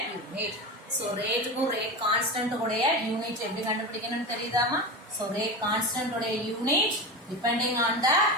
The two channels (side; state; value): both; normal; correlation 0.24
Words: unit. So rate க்கும் rate constant உடைய unit எப்படி கண்டுபிடிக்கணும்னு தெரியுதாமா? So rate constant உடைய unit depending on the